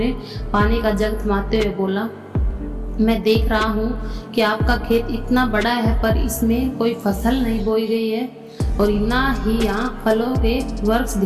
पानी का जग थमाते हुए बोला, मैं देख रहा हूँ कि आपका खेत इतना बड़ा है, पर इसमें कोई फसल नहीं बोई गई है और ना ही यहाँ फलों के वृक्ष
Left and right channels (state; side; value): identical; both; correlation 1.00